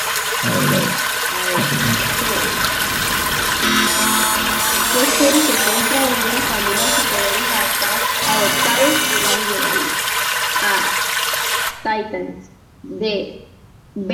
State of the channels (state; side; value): identical; both; correlation 1.00